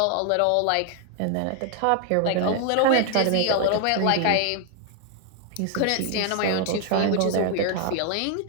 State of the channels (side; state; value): both; different; correlation 0.00